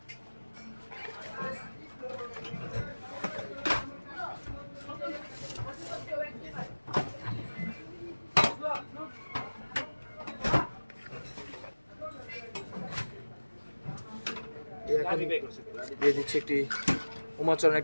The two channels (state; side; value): inverted; both; correlation -1.00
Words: দিয়ে দিচ্ছি একটি উমাচরণ,